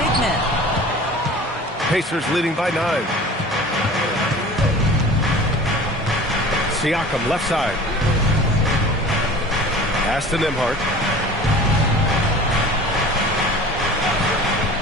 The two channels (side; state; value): both; normal; correlation 0.41